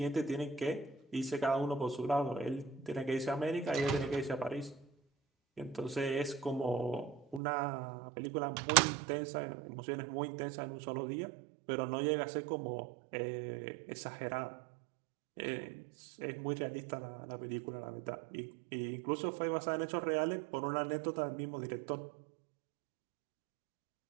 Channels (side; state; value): left; drops out; at 7.4 s